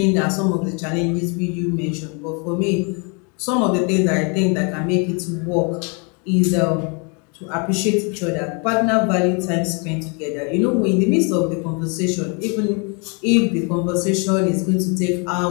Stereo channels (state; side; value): quieter; right; 35.0 dB